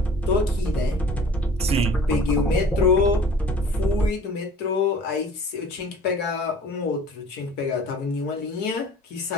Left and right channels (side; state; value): both; normal; correlation 0.47